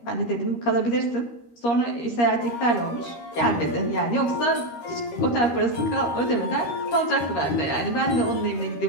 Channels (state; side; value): late; right; 13 ms